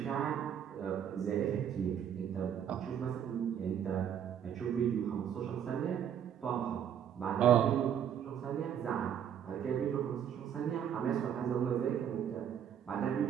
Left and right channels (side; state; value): left; quieter; 9.0 dB